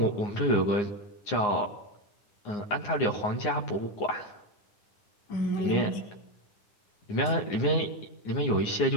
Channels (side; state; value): right; late; 9.7 ms